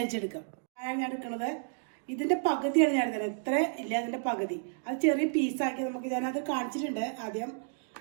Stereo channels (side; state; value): left; silent; digital silence